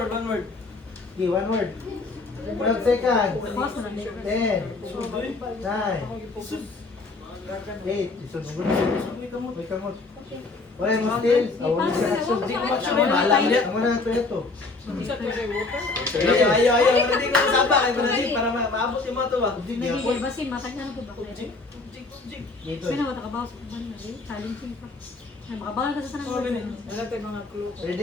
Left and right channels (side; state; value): right; quieter; 3.6 dB